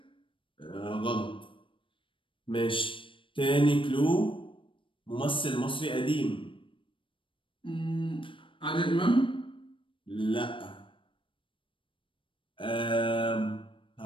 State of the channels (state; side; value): late; right; 0.25 ms